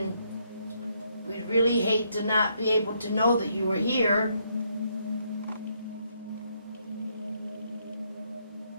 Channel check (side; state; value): both; inverted; correlation -0.74